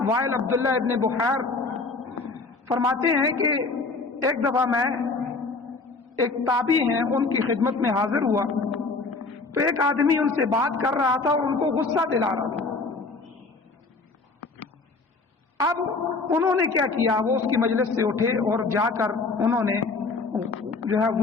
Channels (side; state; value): right; quieter; 3.8 dB